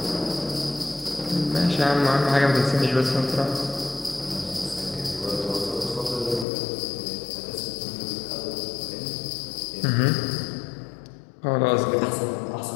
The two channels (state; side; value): drops out; right; at 6.5 s